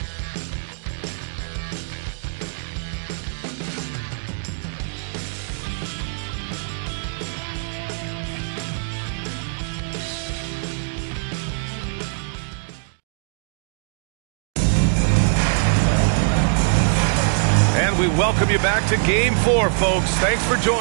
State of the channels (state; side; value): silent; left; digital silence